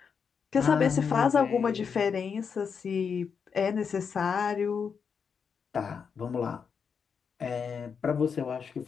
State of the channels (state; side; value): quieter; right; 6.3 dB